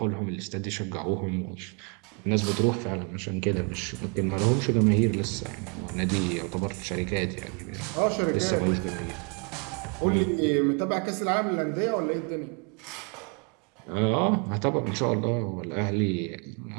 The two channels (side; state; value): left; quieter; 34.9 dB